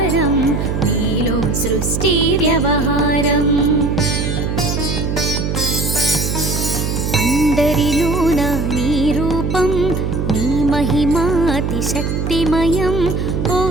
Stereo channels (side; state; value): right; noise; hum, 1 dB below the sound